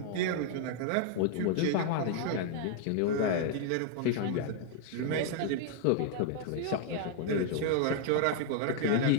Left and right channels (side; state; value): both; different; correlation 0.00